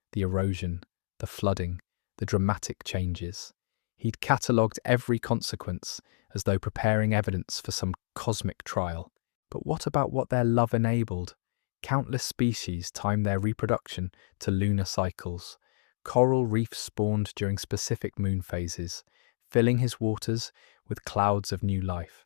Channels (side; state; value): right; silent; digital silence